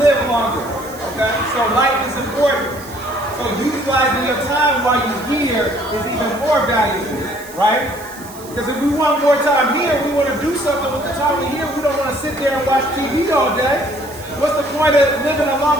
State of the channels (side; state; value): right; noise; hiss, 18 dB below the sound